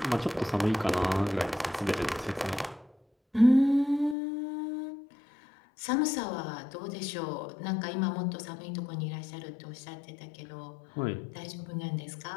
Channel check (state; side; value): drops out; right; at 4.2 s